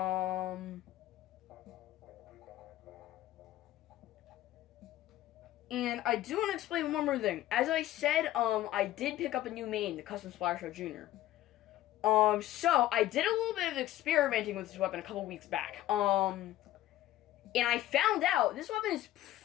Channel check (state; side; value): quieter; right; 14.3 dB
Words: And I do want to explain one more thing. As I said, I did pick up a new main, the Custom Splattershot Jr. So I did a little bit of experimenting with this weapon a couple weeks back. And I found out this weapon is